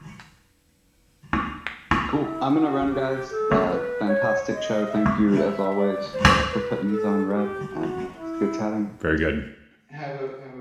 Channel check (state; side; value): identical; both; correlation 1.00